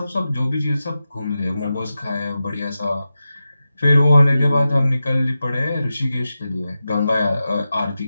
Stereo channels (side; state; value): both; inverted; correlation -0.92